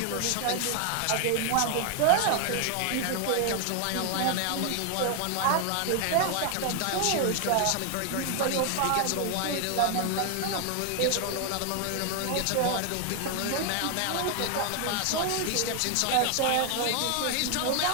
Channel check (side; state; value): both; different; correlation 0.00